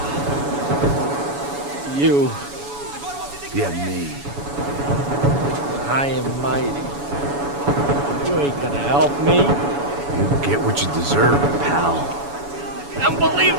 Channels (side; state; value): left; late; 7.0 ms